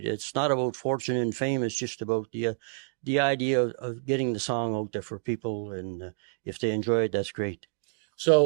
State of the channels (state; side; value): silent; left; digital silence